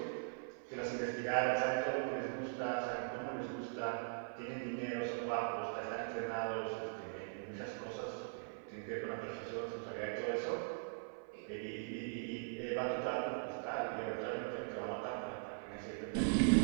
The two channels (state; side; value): silent; left; 51 dB below the other